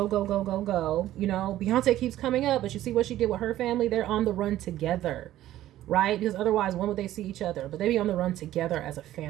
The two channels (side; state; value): left; quieter; 13.8 dB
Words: go, go, go, go. You know, Beyonce keeps coming up, but you see what she did with her family? They're on the run together, right? Because otherwise, when would they see each other? But they be on the run together as a